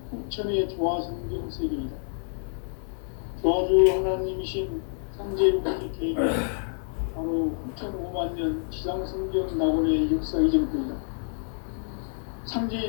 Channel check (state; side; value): silent; right; 60 dB below the other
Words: 후천의 조화성경 세계이다. 조화주 하나님이신 상제무시 계획은 바로 후천 5만 년 지상성경 낙원의 역사 이전부이다.